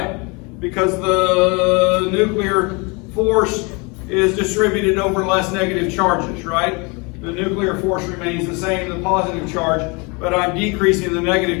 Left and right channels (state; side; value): quieter; right; 29.5 dB